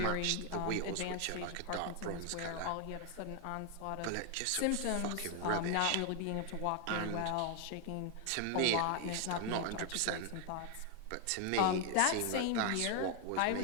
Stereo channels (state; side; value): different; both; correlation 0.00